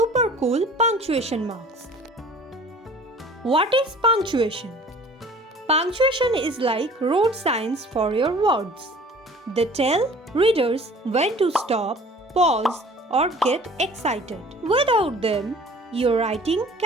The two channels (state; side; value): normal; both; correlation 0.48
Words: cool punctuation marks. What is punctuation? Punctuation is like road signs for your words. They tell readers when to stop, pause, or get excited. Without them, your writing